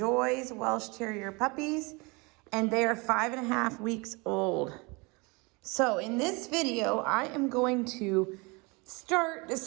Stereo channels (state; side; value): quieter; left; 27.8 dB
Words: Welsh Terrier puppies, and they are 5.5 weeks old. So in this video, I am going to start